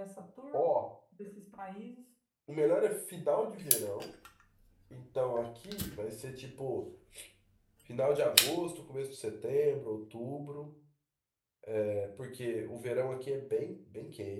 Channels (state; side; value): identical; both; correlation 1.00